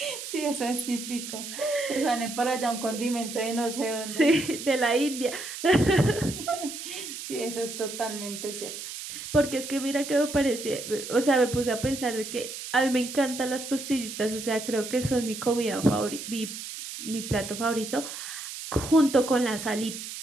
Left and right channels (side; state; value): right; noise; hiss, 9 dB below the sound